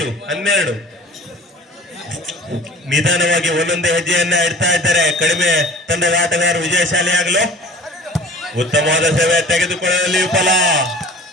ನಿಧಾನವಾಗಿ ಒಂದೊಂದೇ ಹೆಜ್ಜೆಯನ್ನ ಇಡ್ತಾ ಇದ್ದಾರೆ ಕಡಿಮೆ ತಂಡದ ಆಟಗಾರರು ವಿಜಯಶಾಲಿಯಾಗಲು. ಉತ್ತಮವಾದ ಸೇವೆ ತೆಗೆದುಕೊಳ್ಳಲು ವಿಫಲ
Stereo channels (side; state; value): both; normal; correlation 0.45